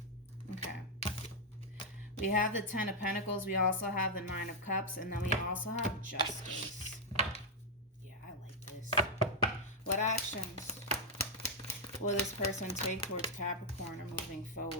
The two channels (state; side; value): normal; both; correlation -0.01